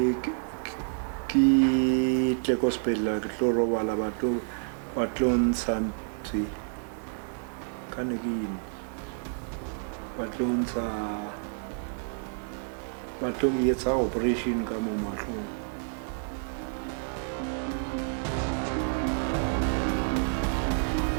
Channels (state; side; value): silent; left; 58 dB below the other